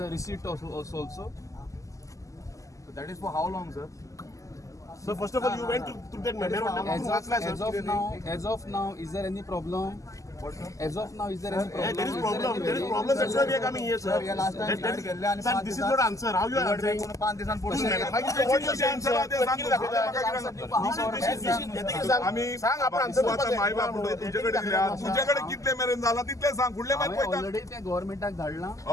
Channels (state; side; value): late; right; 0.16 ms